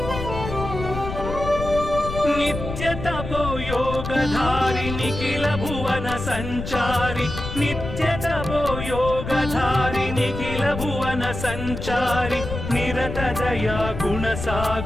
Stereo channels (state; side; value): noise; left; rumble, 7 dB below the sound